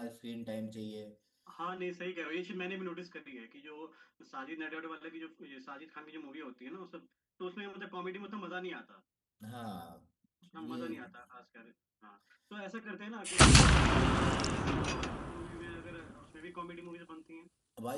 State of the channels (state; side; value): identical; both; correlation 1.00